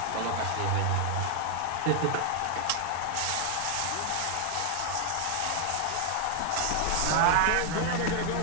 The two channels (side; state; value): both; different; correlation 0.00